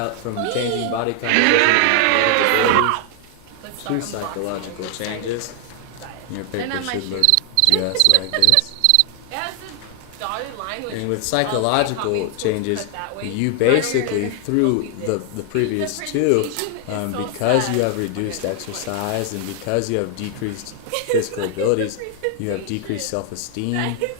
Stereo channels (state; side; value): different; both; correlation 0.00